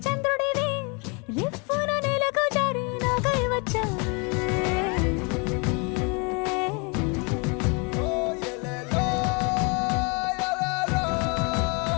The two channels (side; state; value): right; quieter; 32.2 dB